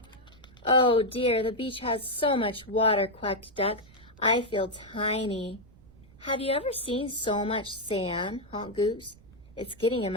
Oh dear, the beach has so much water, quacked Duck. I feel tiny. Have you ever seen so much sand? Honked Goose. It's getting in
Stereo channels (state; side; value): noise; right; rumble, 24 dB below the sound